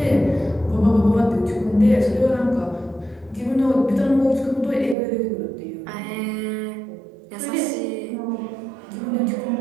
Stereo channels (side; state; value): left; drops out; at 5.0 s